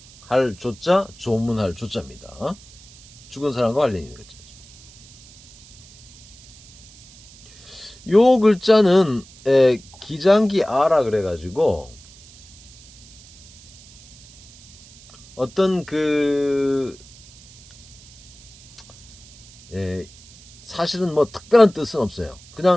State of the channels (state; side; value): noise; right; hiss, 23 dB below the sound